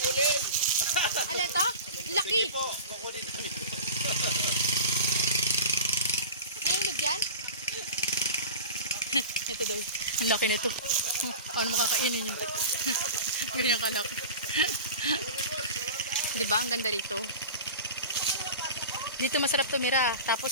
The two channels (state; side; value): inverted; both; correlation -0.33